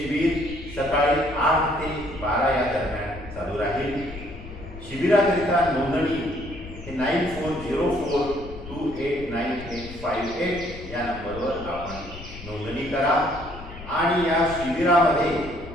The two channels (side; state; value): left; noise; rumble, 13 dB below the sound